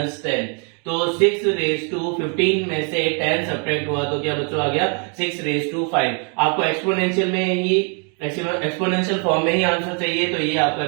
10। तो 6 रेज टू 15 में से 10 सब्ट्रैक्ट हुआ तो क्या बच्चों आ गया 6 रेज टू 5। आपको एक्सपोनेंशियल में ही एक्सपोनेंशियल फॉर्म में ही आंसर चाहिए, तो ये आपका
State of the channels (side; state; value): left; quieter; 39.1 dB